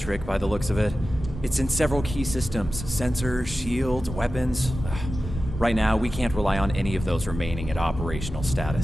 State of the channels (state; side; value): normal; both; correlation 0.94